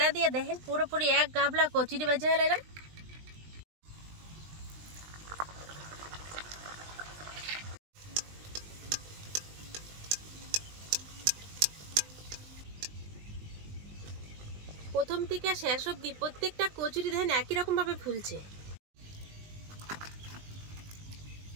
দিয়ে দেখেন পুরোপুরি এক গাবলা কচুরি ভেজে নিলাম। প্রথম থেকে শেষ অবধি প্রত্যেকটা কচুরি দেখেন একই রকম ভাবে ফুলছে।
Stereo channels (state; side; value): late; left; 20 ms